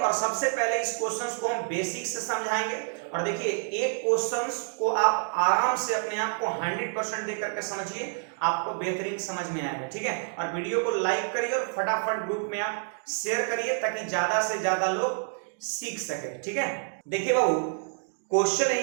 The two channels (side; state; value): left; silent; 59 dB below the other